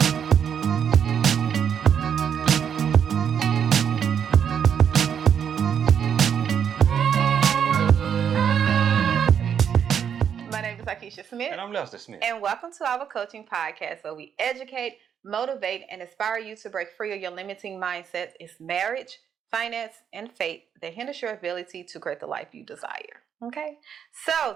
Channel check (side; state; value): left; quieter; 8.1 dB